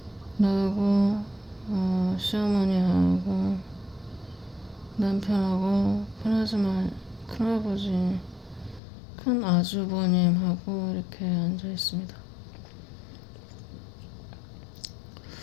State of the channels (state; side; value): drops out; right; at 8.8 s